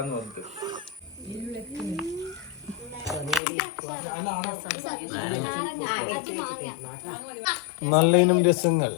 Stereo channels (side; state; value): right; drops out; at 3.4 s